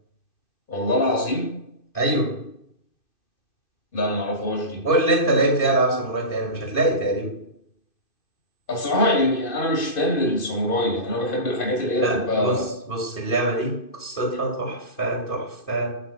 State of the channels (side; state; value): right; late; 2.5 ms